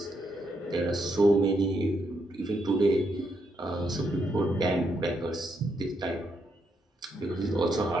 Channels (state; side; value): normal; both; correlation 0.79